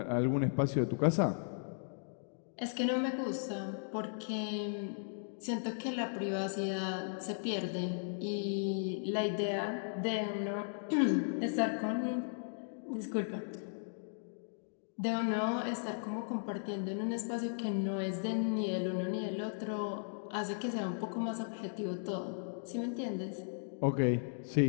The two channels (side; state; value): right; silent; digital silence